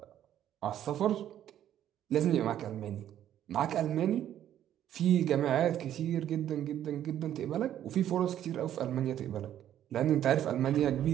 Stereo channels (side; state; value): left; quieter; 11.2 dB